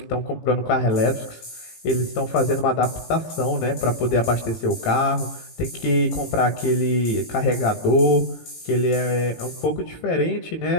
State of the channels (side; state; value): right; late; 18 ms